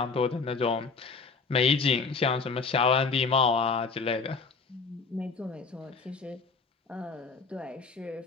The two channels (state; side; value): quieter; right; 4.7 dB